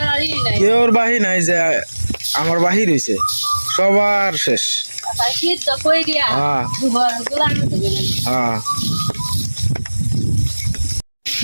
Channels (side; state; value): both; inverted; correlation -1.00